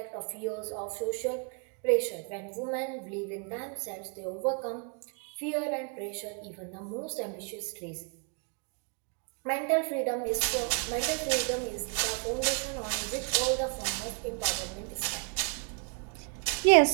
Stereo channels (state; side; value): quieter; left; 37.3 dB